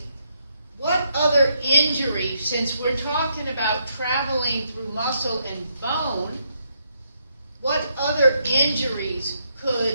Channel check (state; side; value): inverted; both; correlation -0.76